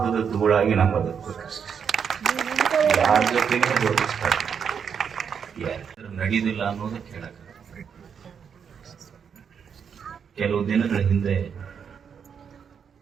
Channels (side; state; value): left; quieter; 7.1 dB